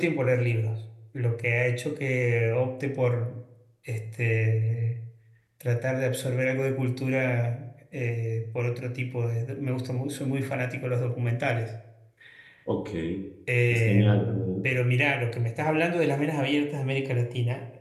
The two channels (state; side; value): identical; both; correlation 1.00